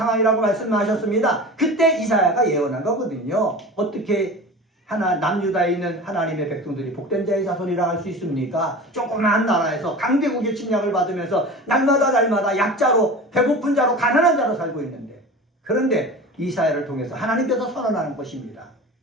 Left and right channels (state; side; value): normal; both; correlation 0.34